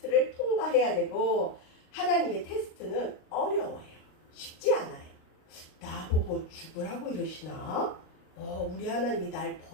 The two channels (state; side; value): late; right; 38 ms